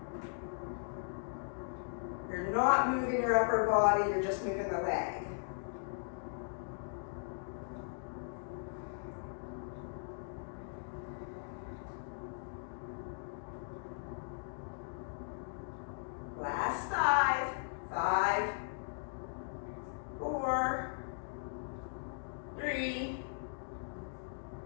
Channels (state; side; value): silent; right; digital silence